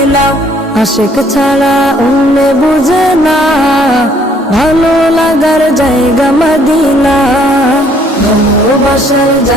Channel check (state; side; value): normal; both; correlation 0.63